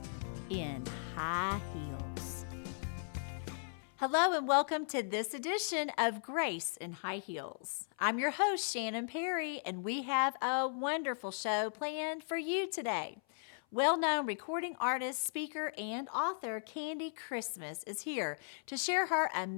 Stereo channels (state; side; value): silent; right; 53 dB below the other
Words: in high heels. Hello and welcome to this edition of Grace in High Heels. I'm your host, Shannon Perry, and we have a wonderful show planned for you today. Well-known recording artist, speaker, and author Candy Christmas is here to share her